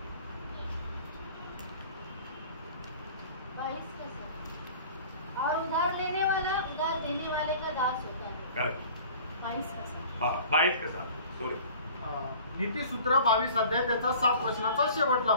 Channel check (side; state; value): both; inverted; correlation -0.45